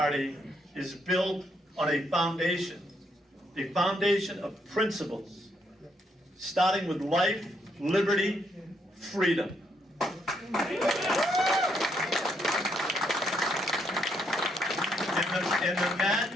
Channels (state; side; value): normal; both; correlation 0.75